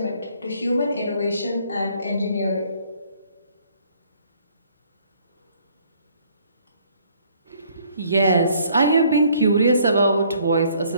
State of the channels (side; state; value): both; inverted; correlation -0.62